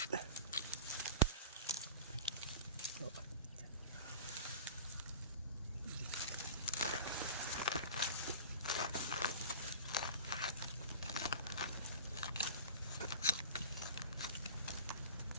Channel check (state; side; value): inverted; both; correlation -0.36